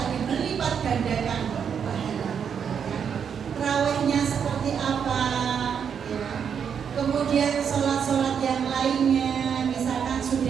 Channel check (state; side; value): quieter; left; 7.4 dB